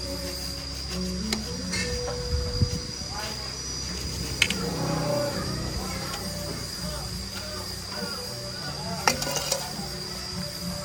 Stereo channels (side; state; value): both; identical; correlation 1.00